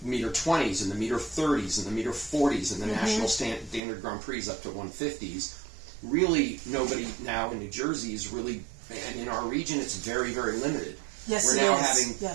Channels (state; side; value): drops out; left; at 3.8 s